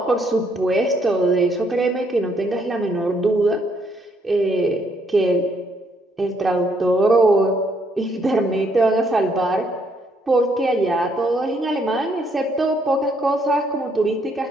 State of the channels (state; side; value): normal; both; correlation 0.71